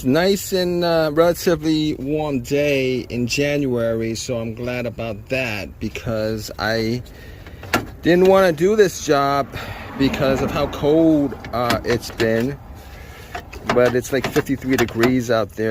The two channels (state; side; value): identical; both; correlation 1.00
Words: nice and relatively warm day in January, so I'm glad about that because I didn't want to do this job because of how cold it's been. But it's like 53 degrees out